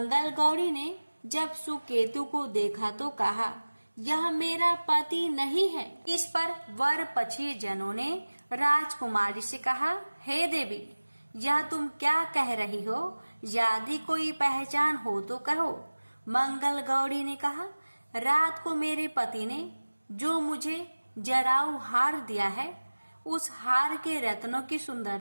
गौरी ने जब सुकेतु को देखा तो कहा, यह मेरा पति नहीं है। इस पर वर पक्षीय जनों ने राजकुमारी से कहा, हे देवी, यह तुम क्या कह रही हो? यदि कोई पहचान हो तो कहो। मंगल गौरी ने कहा, रात को मेरे पति ने जो मुझे जराऊ हार दिया है, उस हार के रत्नों की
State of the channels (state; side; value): inverted; both; correlation -1.00